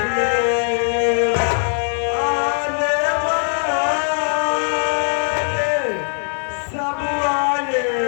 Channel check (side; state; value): right; silent; 64 dB below the other